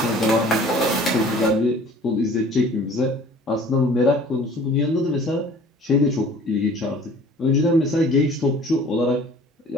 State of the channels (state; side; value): normal; both; correlation 0.49